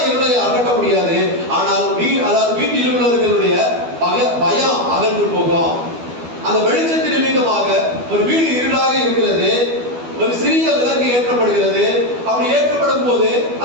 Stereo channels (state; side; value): late; left; 12 ms